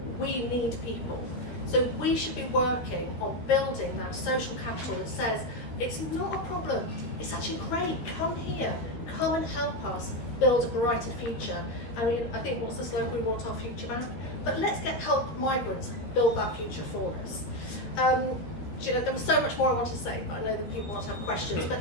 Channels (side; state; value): right; late; 13 ms